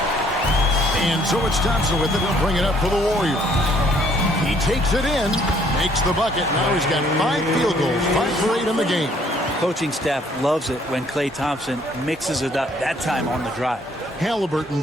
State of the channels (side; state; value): both; normal; correlation 0.64